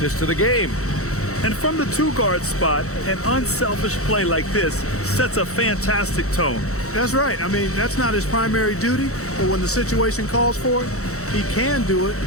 of the game. And from the two-guard spot, an unselfish play like this sets a fantastic tone. That's right. I mean, that's not his primary duty, but when the situation calls for it, he can do it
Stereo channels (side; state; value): right; late; 0.64 ms